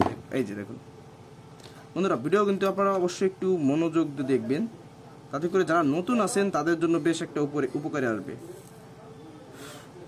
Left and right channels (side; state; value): both; identical; correlation 1.00